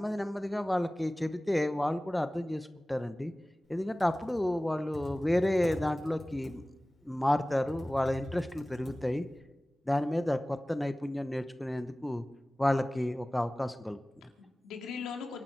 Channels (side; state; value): both; normal; correlation 0.98